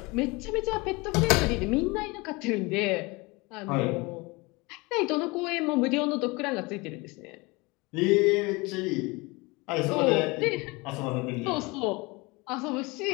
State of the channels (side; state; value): right; quieter; 25.1 dB